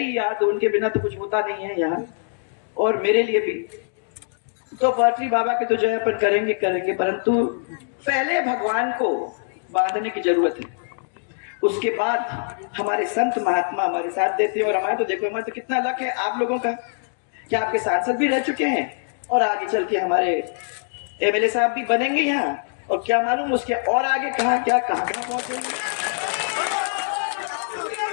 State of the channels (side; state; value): right; silent; digital silence